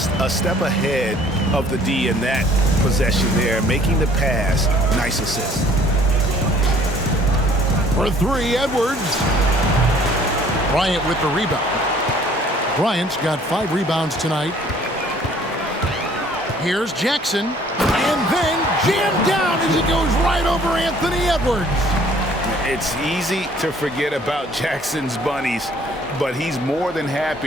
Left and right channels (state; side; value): normal; both; correlation 0.57